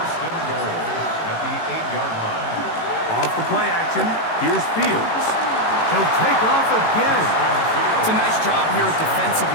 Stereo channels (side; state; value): right; late; 18 ms